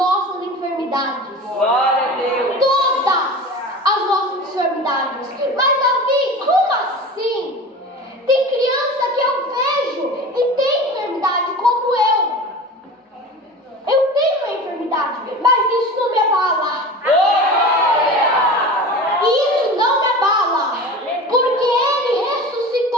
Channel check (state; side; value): normal; both; correlation 0.34